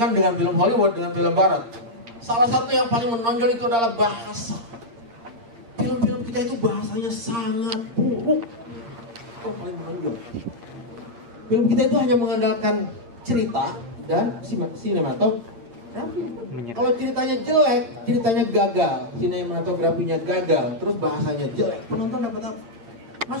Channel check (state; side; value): late; left; 8.6 ms